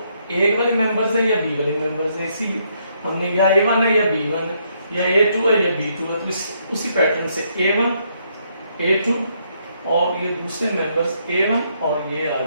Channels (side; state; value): both; inverted; correlation -0.73